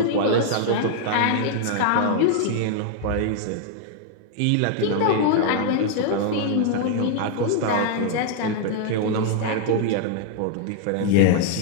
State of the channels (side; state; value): both; different; correlation 0.00